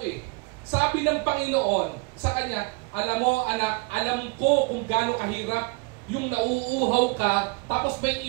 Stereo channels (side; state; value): left; quieter; 29.3 dB